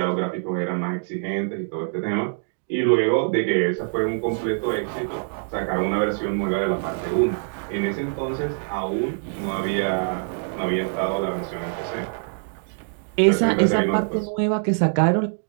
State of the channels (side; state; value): left; silent; digital silence